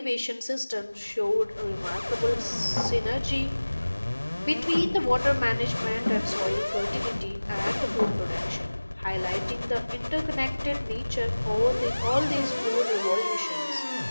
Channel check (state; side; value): inverted; both; correlation -1.00